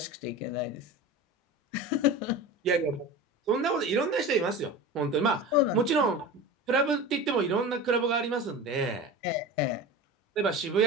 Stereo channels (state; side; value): normal; both; correlation 0.31